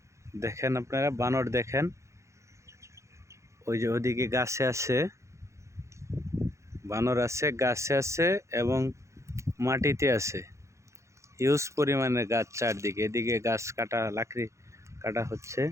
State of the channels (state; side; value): late; left; 0.14 ms